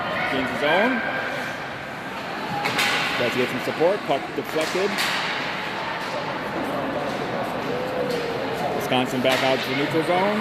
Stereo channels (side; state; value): both; identical; correlation 1.00